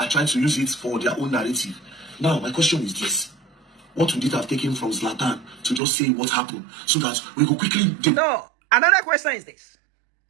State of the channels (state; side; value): drops out; left; at 5.8 s